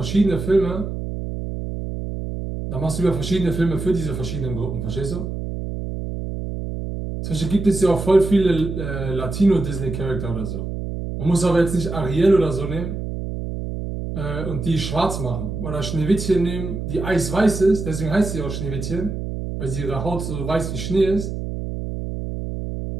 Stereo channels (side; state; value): right; noise; hum, 5 dB below the sound